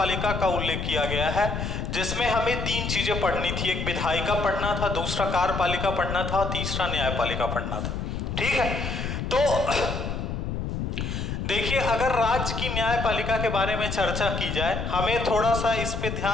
का उल्लेख किया गया है, जिसमें हमें 3 चीजें पढ़नी थी। एक विधायिका पढ़ना था, दूसरा कार्यपालिका पढ़ना था और तीसरा न्यायपालिका पढ़ना था। ठीक है, तो देखिए, अगर राज्य की न्यायपालिका के बारे में चर्चा की जाए, हमें थोड़ा सा इस पे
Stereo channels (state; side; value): noise; left; rumble, 3 dB below the sound